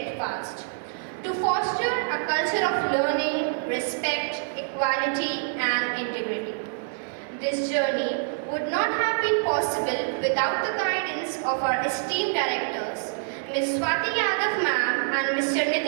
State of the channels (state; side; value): silent; left; digital silence